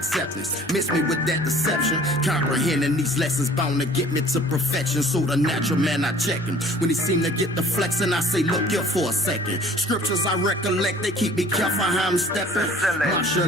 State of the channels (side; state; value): both; normal; correlation 0.51